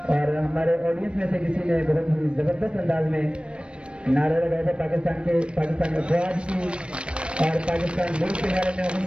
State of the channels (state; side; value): late; left; 0.058 ms